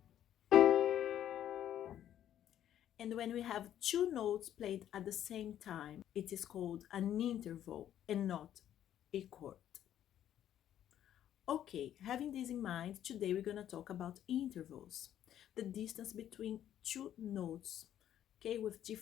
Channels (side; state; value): right; quieter; 11.0 dB